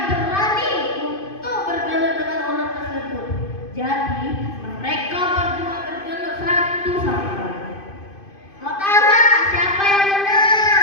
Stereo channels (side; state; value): right; late; 2.5 ms